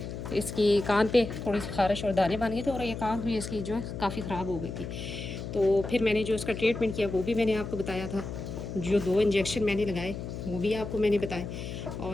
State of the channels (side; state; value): left; noise; hum, 7 dB below the sound